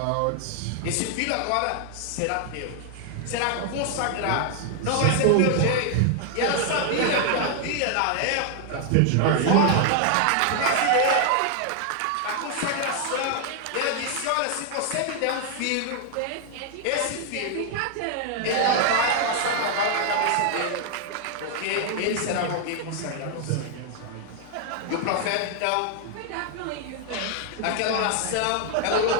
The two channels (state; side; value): different; both; correlation 0.00